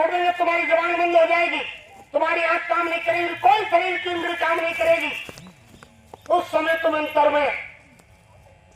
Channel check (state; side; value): identical; both; correlation 1.00